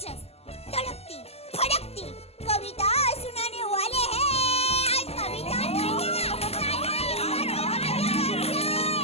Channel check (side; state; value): right; late; 0.29 ms